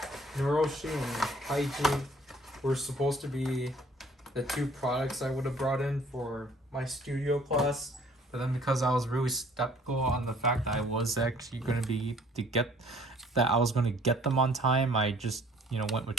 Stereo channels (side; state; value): both; normal; correlation 0.56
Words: Naroshi and Kaiji were supposed to be the 2 products I would have brought in for my studio class, but then because I was really skeptical on the fact that I was actually going to be get them on time, I just, you know, went with